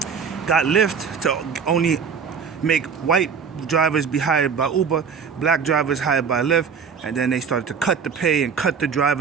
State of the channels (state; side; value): quieter; left; 6.3 dB